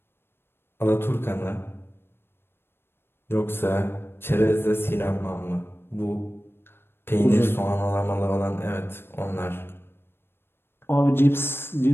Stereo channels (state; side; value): late; right; 0.11 ms